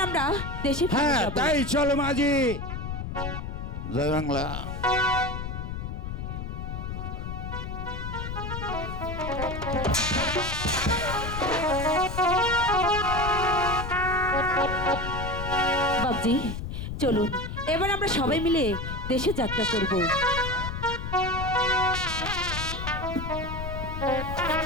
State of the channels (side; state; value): left; noise; rumble, 5 dB below the sound